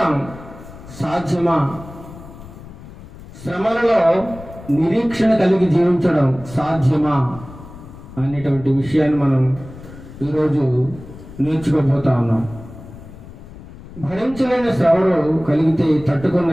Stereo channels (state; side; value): noise; left; rumble, 17 dB below the sound